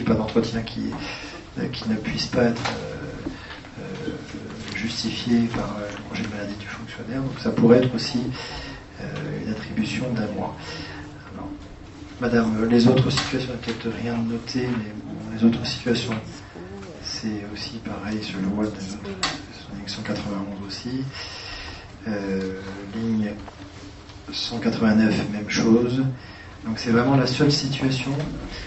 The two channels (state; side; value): identical; both; correlation 1.00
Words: pas d'entretien qui ne puisse pas être justifié par le congé de maladie du fonctionnaire. Donc ça pourrait être aussi une attribution d'1 mois. Alors, Madame, les autres situations, il n'y a peut-être rien de noté, mais bon, les autres situations, c'est aussi pareil, je le vois, ligne 191 aussi. Ligne 189, même chose. Donc c'est vraiment la seule situation,